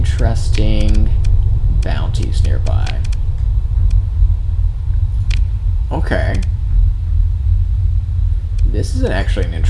bounties nearby. Okay. This is actually an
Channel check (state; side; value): identical; both; correlation 1.00